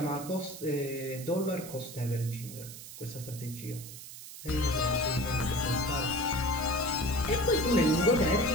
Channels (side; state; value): right; noise; hiss, 13 dB below the sound